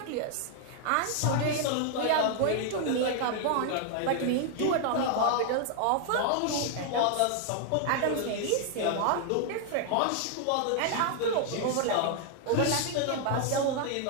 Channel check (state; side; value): different; both; correlation 0.00